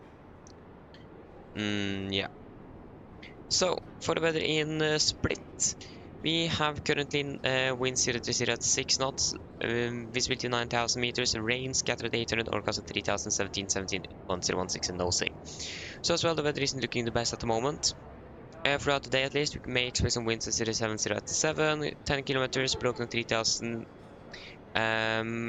Yeah. So for the weather in Split, we have currently wind 030 at 6 knots, visibility 9,000 meters, rain scattered 800, orcast at 3,000, 17, 1016 and nosing. So as well, the weather isn't looking the best at the moment. Throughout the day at least, we may expect some winds at 070 at 7, 10 kilometers, broken 3,000,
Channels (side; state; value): both; identical; correlation 1.00